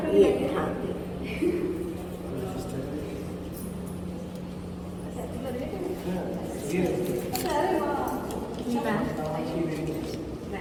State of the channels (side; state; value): both; identical; correlation 1.00